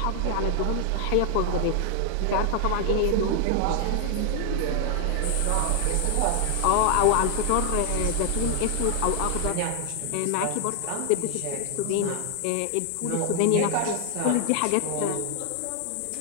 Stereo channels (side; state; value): both; different; correlation 0.00